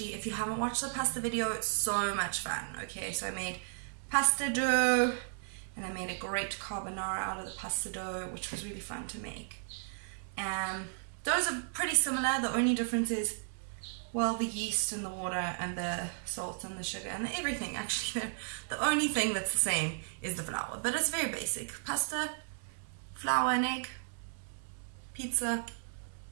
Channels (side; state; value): left; silent; digital silence